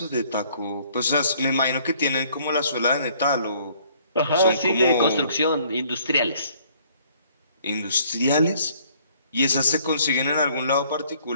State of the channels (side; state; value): both; inverted; correlation -0.61